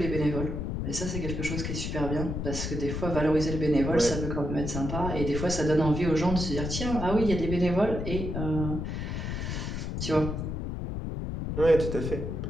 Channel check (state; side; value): noise; left; rumble, 3 dB below the sound